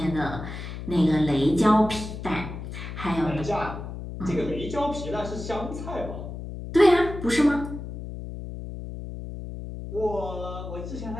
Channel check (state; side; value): noise; left; hum, 9 dB below the sound